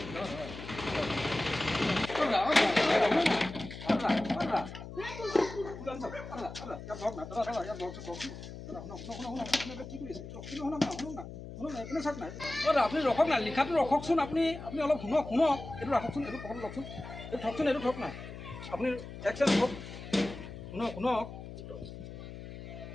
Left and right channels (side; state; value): left; noise; hum, 11 dB below the sound